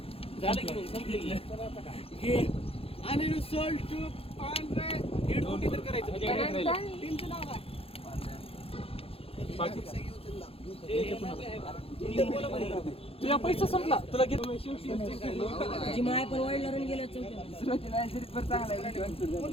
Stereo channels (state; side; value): late; right; 0.28 ms